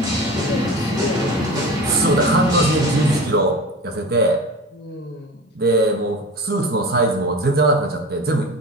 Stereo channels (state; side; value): normal; both; correlation 0.33